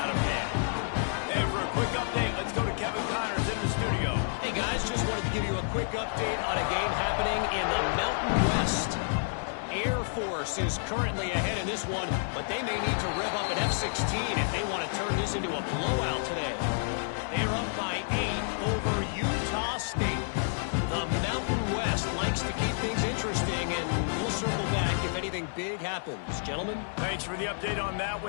of hand. And for a quick update, let's go to Kevin Connors in the studio. Hey, guys, just wanted to give you a quick update on a game happening in the Mountain West. Air Force is currently ahead in this one, but they may need to rev up an F-16 if they want to turn this into a blowout today. They're up by 8 over Utah State. The Mountain West likes to keep things interesting, and we'll circle back if anything big happens. Gentlemen? Thanks for the update on that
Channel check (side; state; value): right; silent; 58 dB below the other